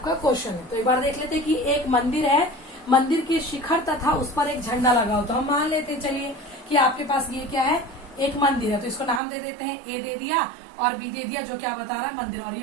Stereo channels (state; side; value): drops out; left; at 9.2 s